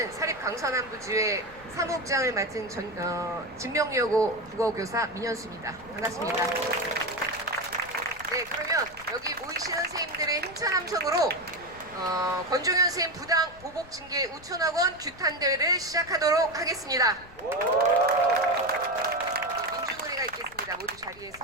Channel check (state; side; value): noise; left; rumble, 21 dB below the sound